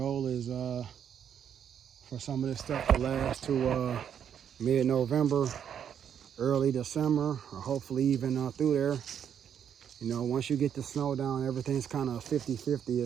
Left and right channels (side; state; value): left; quieter; 8.6 dB